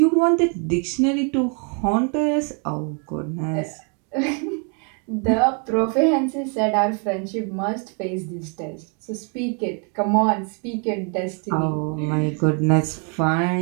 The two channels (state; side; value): quieter; left; 38.3 dB